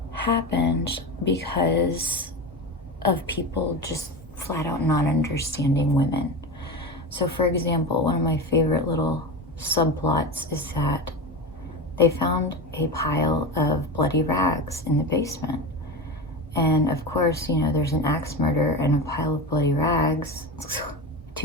because of people just flat out not understanding women. So for example, one of my favorite little subplots is that they found a pile of bloody rags in the basement. And of course, you know, there's an axe murder and a pile of bloody rags,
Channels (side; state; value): both; normal; correlation 0.23